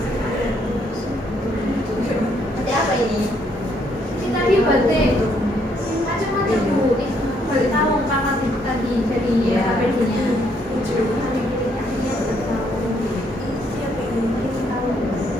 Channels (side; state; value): both; normal; correlation 0.70